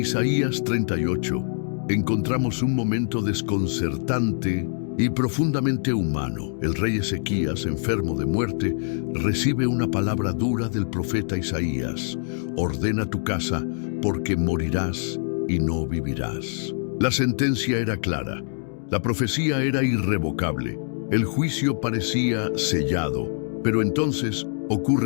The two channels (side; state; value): right; silent; digital silence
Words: 38 encontramos un momento desconcertante y profundamente humano. El rey Ezequías, enfermo de muerte, recibe una palabra dura del profeta Isaías: ordena tu casa, porque morirás y no vivirás. La sentencia era clara, la profecía era irrevocable, el juicio parecía sellado, pero entonces